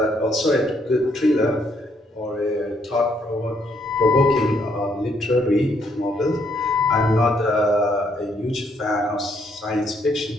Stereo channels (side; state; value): both; normal; correlation 0.71